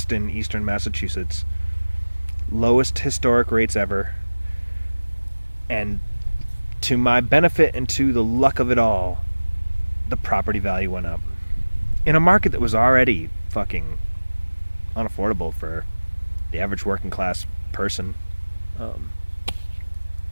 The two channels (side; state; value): both; inverted; correlation -1.00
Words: Eastern Massachusetts, lowest historic rates ever, and to my benefit and to the luck of it all, the property value went up in a market that was already fucking unaffordable for the average working class person.